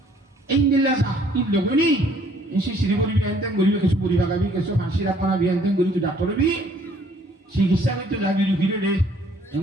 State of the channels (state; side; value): normal; both; correlation 0.61